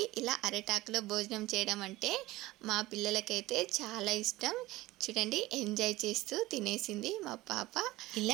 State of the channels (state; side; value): quieter; left; 18.4 dB